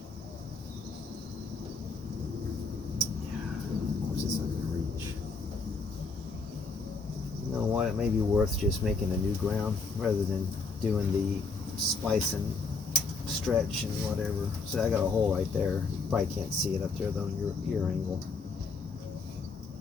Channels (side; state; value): right; quieter; 4.1 dB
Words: course, it's not going to reach. You know what? It may be worth just making a new ground rather than doing the splice and stretch and whatever. So I got a hole right there. You probably can't see it up there though in your angle.